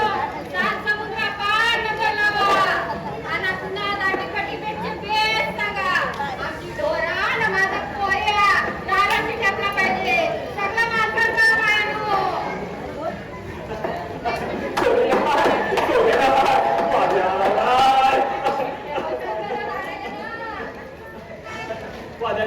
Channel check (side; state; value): both; identical; correlation 1.00